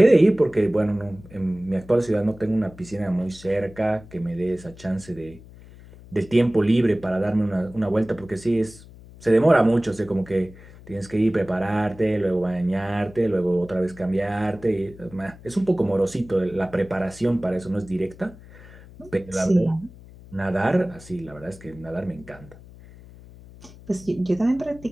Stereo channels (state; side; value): noise; left; hum, 20 dB below the sound